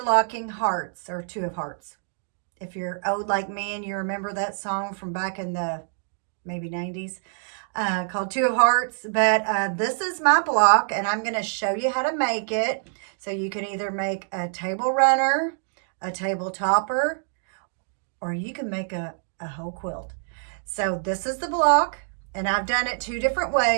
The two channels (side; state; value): left; silent; digital silence